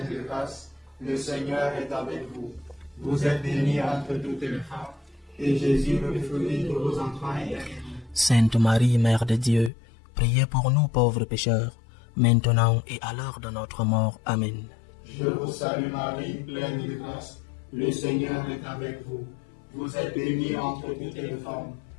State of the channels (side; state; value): right; drops out; at 9.7 s